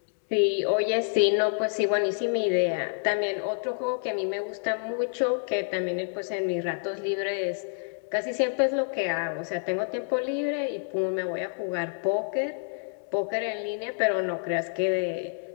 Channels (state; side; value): silent; right; digital silence